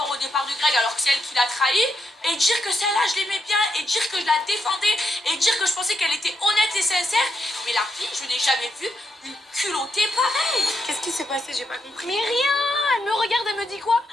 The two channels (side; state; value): both; normal; correlation 0.80